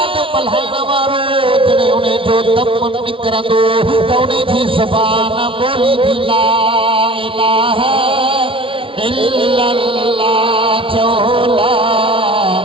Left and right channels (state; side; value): late; left; 0.25 ms